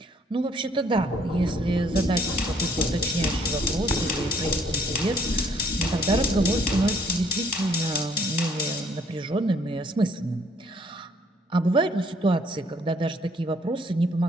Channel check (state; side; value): normal; both; correlation 0.63